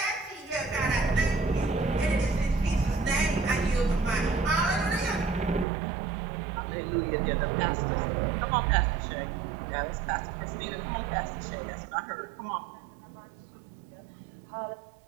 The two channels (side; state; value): left; drops out; at 5.7 s